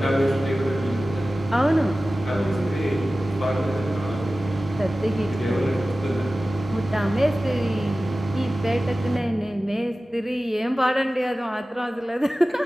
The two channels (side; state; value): both; normal; correlation 0.96